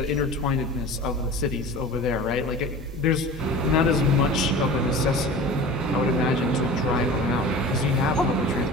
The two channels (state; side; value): normal; both; correlation 0.37